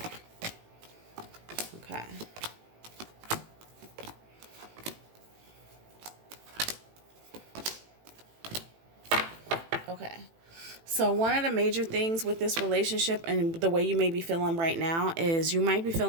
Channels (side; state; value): left; late; 18 ms